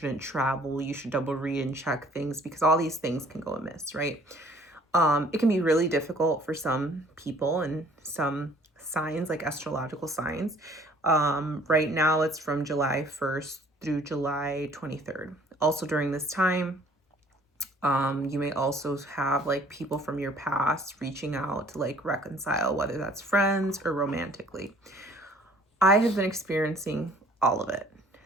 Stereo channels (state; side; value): normal; both; correlation 0.56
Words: travel. You should double read and check things because all these things can go amiss, right? It can be really difficult for some people and some signs, like astrological signs. Right now, it's from July 1st through July 23rd. Also, during this time, you may also have like people from your past reaching out to like reconcile, whether that's friends or romantically. I have been experiencing all of it.